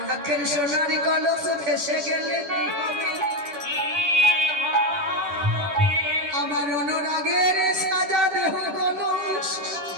সোনার কলস ভেসে গেলে কি হবে আমার অনুরাগের সাজা দেহ কলস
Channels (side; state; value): left; late; 10 ms